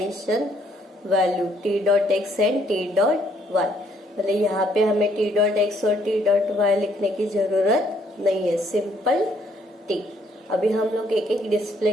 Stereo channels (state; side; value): normal; both; correlation 0.67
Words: value t dot x and t dot y. मतलब यहाँ पे हमें टी डॉट एक्स और t dot y लिखने की जरूरत नहीं है, सिंपल टी. अभी हम लोग एक एक डिस्प्ले